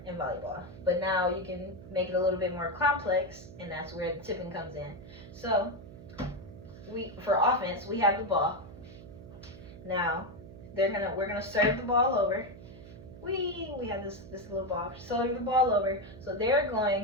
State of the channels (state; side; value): noise; right; hum, 16 dB below the sound